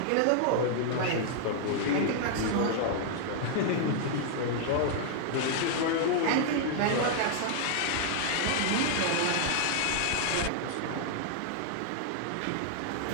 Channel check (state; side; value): different; both; correlation -0.01